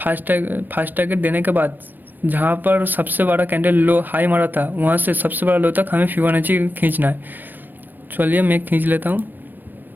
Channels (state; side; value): late; left; 0.091 ms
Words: टारगेट देने के बाद जहाँ पर सबसे बड़ा कैंडल लो हाई मारा था वहाँ से सबसे बड़ा लो तक हमें फिबोनाची खींचना है। चलिए मैं खींच लेता हूँ,